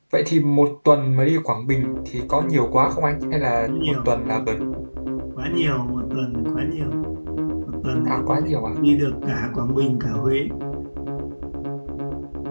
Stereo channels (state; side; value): inverted; both; correlation -1.00